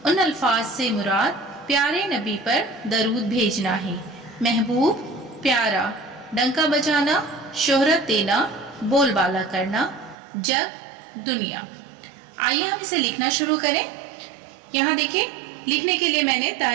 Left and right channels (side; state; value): left; drops out; at 10.2 s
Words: उन अल्फाज से मुराद प्यारे नबी पर दरूद भेजना है। महबूब, प्यारा, डंका बजाना, शोहरत देना, बोलबाला करना, जग, दुनिया। आइए हम इसे लिखना शुरू करें। यहाँ देखिए लिखने के लिए मैंने